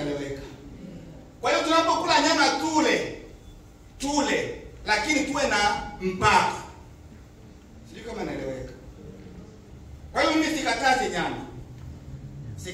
Kwa hiyo tunapokula nyama tule, lakini tuwe na mpaka. Sio kama naeleweka. Kwa hiyo mimi sikatazi nyama.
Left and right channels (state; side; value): identical; both; correlation 1.00